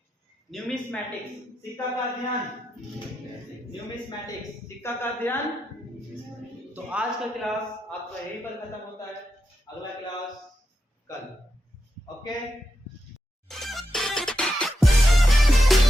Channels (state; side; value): normal; both; correlation 0.86